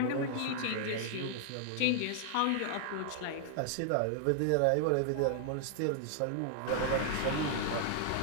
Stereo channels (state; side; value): different; both; correlation 0.00